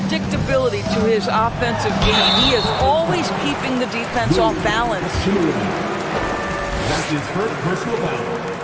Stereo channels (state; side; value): identical; both; correlation 1.00